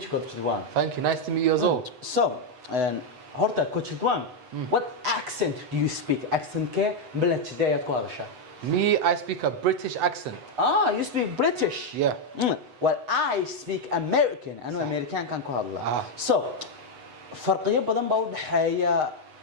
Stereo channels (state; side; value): late; left; 8.0 ms